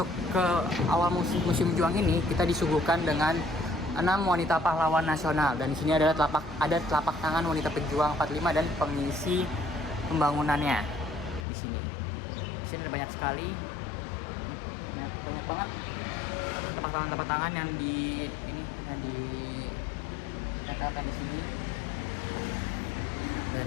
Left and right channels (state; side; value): drops out; right; at 11.5 s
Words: ke awal Museum Juang ini, kita disuguhkan dengan 6 wanita pahlawan nasional, dan di sini ada telapak tangan wanita pejuang 45 dan pengisi pembangunannya di sini. Di sini ada banyak sekali, banyak banget telapak tangan yang ditempelkan di sini.